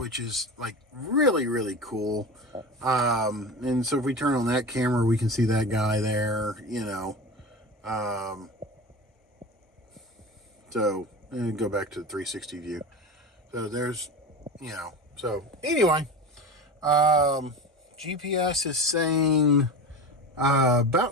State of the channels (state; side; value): normal; both; correlation 0.28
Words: is like really cool. And so if we turn on that camera, we can see that guy there, so and go back to the 360 view. So there's, so anyway, GPS is saying